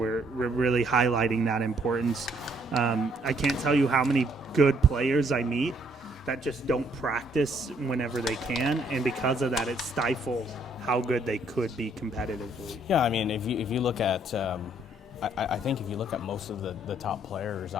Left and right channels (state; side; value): normal; both; correlation 0.67